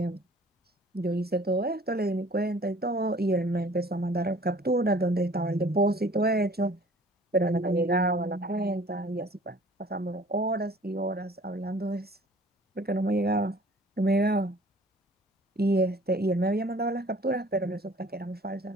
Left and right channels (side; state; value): both; normal; correlation 0.51